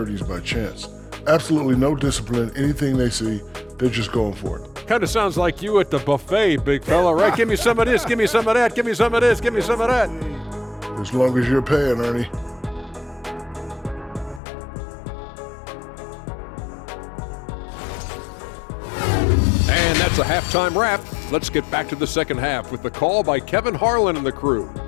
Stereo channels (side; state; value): right; drops out; at 14.4 s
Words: by chance. Absolutely no discipline. Anything they see, they're just going for it. Kind of sounds like you at the buffet, big fella, right? Give me some of this, give me some of that, give me some of this, give me some of that. As long as you're paying, Ernie. And that's a halftime wrap. Let's get back to the second half with the call by Kevin Harlan and the crew.